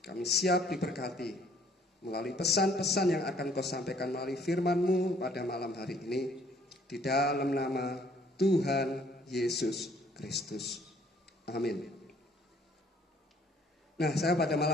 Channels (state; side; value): normal; both; correlation 0.60